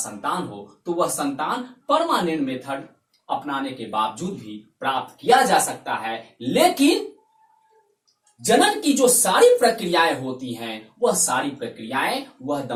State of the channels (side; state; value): both; identical; correlation 1.00